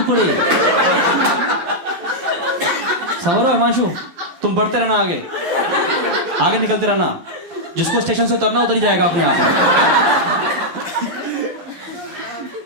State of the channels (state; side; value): late; left; 12 ms